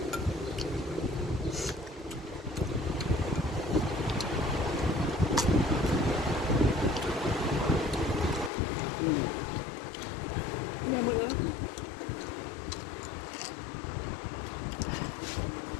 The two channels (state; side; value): drops out; right; at 8.5 s